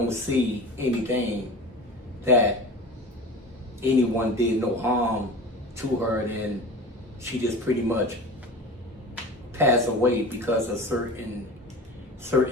see anything that anyone did no harm to her, and she just pretty much passed away because of certain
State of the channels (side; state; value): both; normal; correlation 0.34